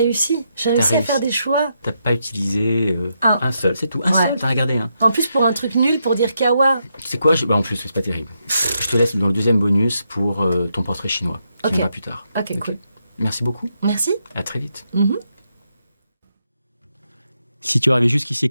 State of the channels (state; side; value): inverted; both; correlation -0.81